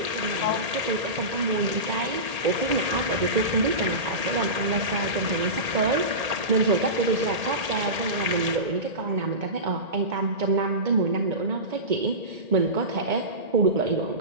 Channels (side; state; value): left; late; 1.8 ms